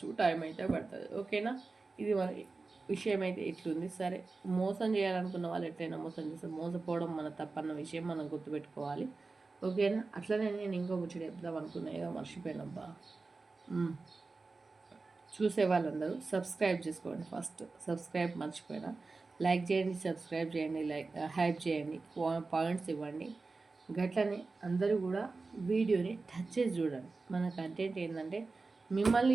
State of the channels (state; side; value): quieter; left; 3.8 dB